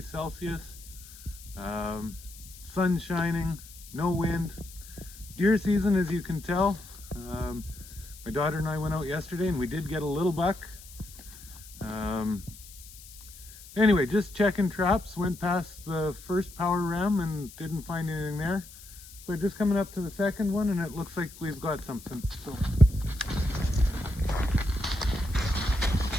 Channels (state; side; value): noise; left; hiss, 18 dB below the sound